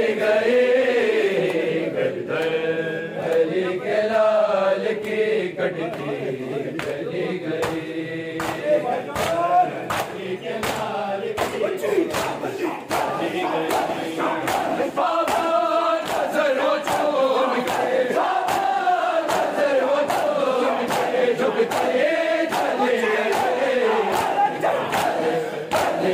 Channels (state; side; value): identical; both; correlation 1.00